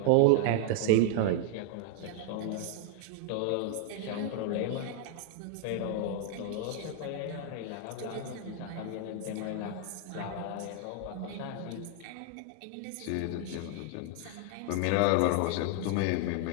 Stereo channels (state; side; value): different; both; correlation 0.00